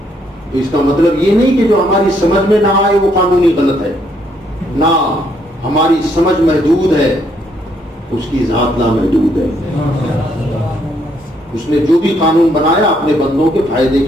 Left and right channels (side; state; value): both; normal; correlation 0.71